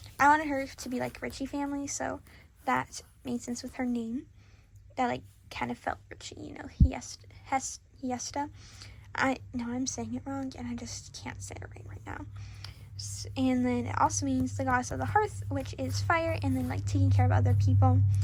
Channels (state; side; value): identical; both; correlation 1.00